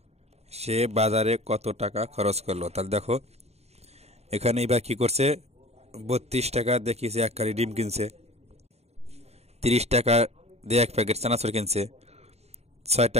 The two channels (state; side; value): late; left; 0.31 ms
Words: সে বাজারে কত টাকা খরচ করলো? তাহলে দেখো এখানে ইভা কি করছে, 32 টাকা দেখিয়েছে এক কালি ডিম কিনছে, 30 টাকা দিয়ে এক প্যাকেট চানাচুর কিনছে, 6